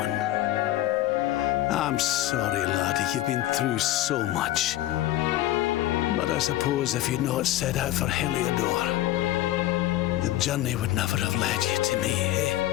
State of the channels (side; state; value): right; quieter; 14.7 dB